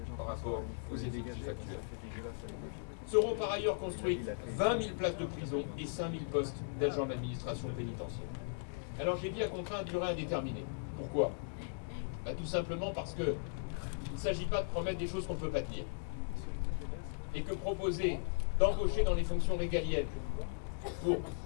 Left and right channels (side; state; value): right; silent; digital silence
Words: par rapport aux effectifs actuels. Seront par ailleurs construites 20 000 places de prison et 5 000 postes d'agents de l'administration pénitentiaire. Alors j'ai dit à contrat à durée indéterminée. Pourquoi? Tout simplement parce que il ne s'agit pas de promettre des choses qu'on ne peut pas tenir. Et que proposer d'embaucher dans les fonctions régaliennes pour